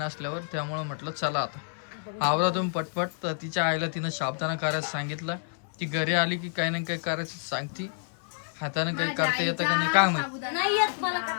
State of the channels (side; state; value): right; silent; 59 dB below the other